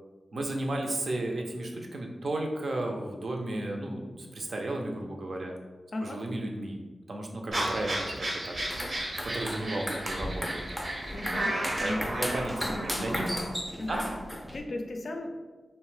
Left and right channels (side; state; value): both; normal; correlation 0.93